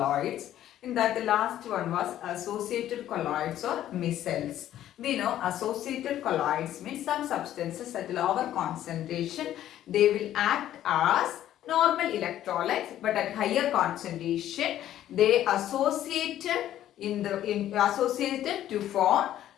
In that, the last one was associated colloids or micelles. We know associated colloids means some substances at lower concentration they will act as normal electrolytes, but at higher concentration they associated to form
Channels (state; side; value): quieter; right; 12.2 dB